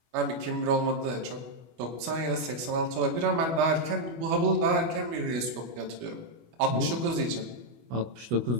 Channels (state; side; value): late; left; 25 ms